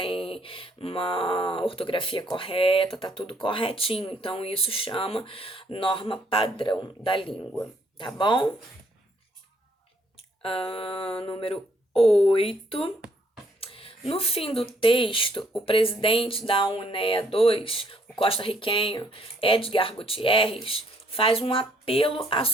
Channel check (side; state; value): both; normal; correlation 0.67